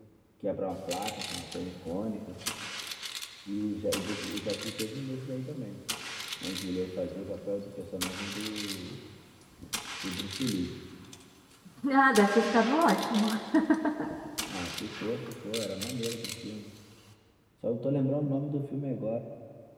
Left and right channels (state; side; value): identical; both; correlation 1.00